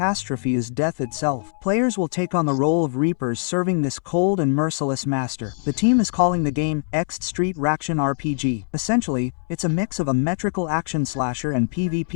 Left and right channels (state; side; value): silent; right; 64 dB below the other